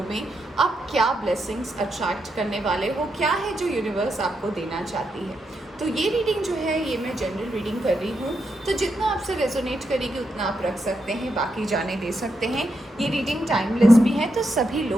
में आप क्या ब्लेसिंग्स अट्रैक्ट करने वाले हो, क्या है जो यूनिवर्स आपको देना चाहती है। तो ये रीडिंग जो है ये मैं जनरल रीडिंग कर रही हूँ, तो जितना आपसे रेजोनेट करेगी उतना आप रख सकते हैं, बाकी जाने दे सकते हैं। ये रीडिंग टाइमलेस भी है, तो सभी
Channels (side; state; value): both; normal; correlation 0.83